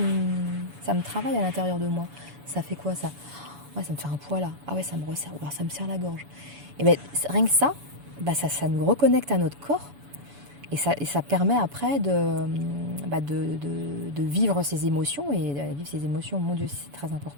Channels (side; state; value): left; late; 7.0 ms